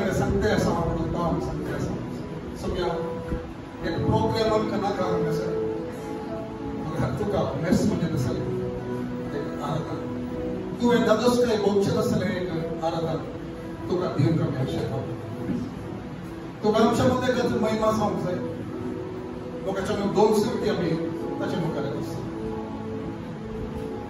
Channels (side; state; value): both; identical; correlation 1.00